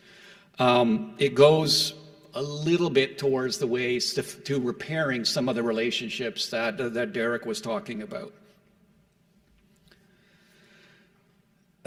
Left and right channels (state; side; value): identical; both; correlation 1.00